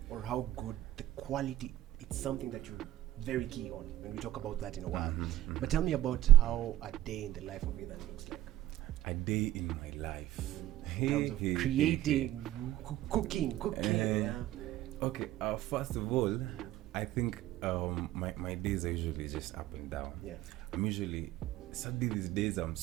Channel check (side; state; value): left; quieter; 14.1 dB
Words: or how good the quality. It's something that you're very key on when we talk about that in a while. But tell me about how a day in the life of Ethan looks like. A day in my life. In terms of creating, cooking. Okay, first of all, I think my days are usually just up and down. I'm usually, sadly these days I'm